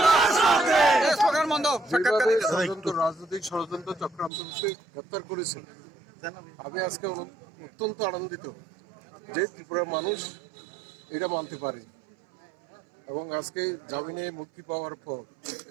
রাজনৈতিক ষড়যন্ত্র চক্রান্তকে গ্রেপ্তার করেছেন, আমি আজকে অত্যন্ত আনন্দিত যে ত্রিপুরার মানুষ এটা মানতে পারে এবং আজকে জামিনে মুক্তি পাওয়ার পর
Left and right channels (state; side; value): drops out; left; at 4.3 s